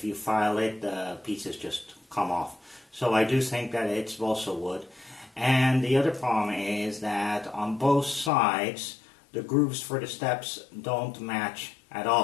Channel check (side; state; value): right; drops out; at 8.3 s